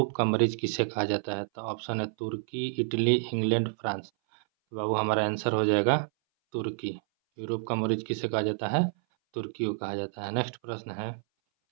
का मरीज किसे कहा जाता है? तो ऑप्शन है तुर्की, इटली, इंग्लैंड, फ्रांस। तो बाबू हमारा आंसर हो जाएगा तुर्की। यूरोप का मरीज किसे कहा जाता है? तुर्की को कहा जाता है। नेक्स्ट प्रश्न है,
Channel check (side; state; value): left; silent; 58 dB below the other